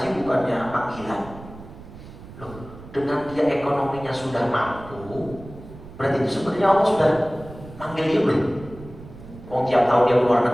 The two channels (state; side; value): noise; right; rumble, 16 dB below the sound